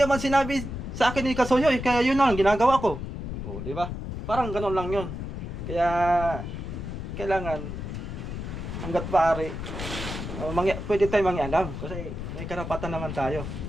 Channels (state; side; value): noise; left; rumble, 6 dB below the sound